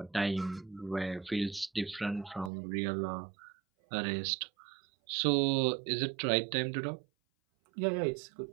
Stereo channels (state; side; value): drops out; left; at 2.5 s